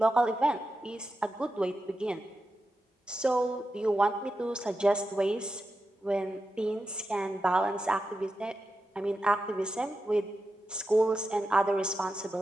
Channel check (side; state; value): both; normal; correlation 0.90